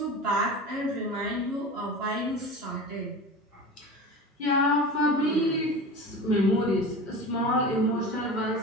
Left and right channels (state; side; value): normal; both; correlation 0.31